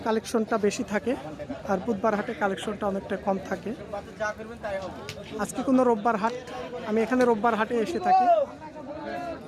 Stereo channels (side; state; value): both; identical; correlation 1.00